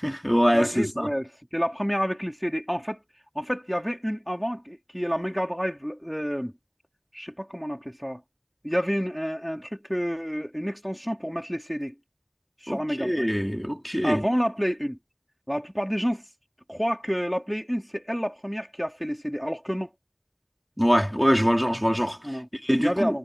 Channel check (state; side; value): identical; both; correlation 1.00